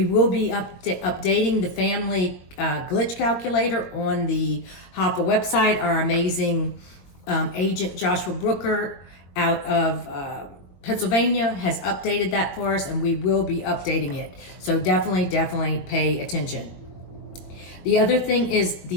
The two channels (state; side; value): late; right; 22 ms